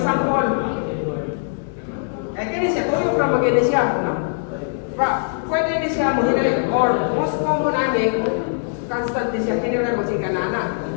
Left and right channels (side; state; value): right; silent; digital silence